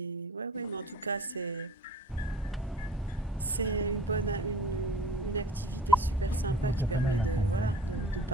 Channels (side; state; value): both; normal; correlation 0.46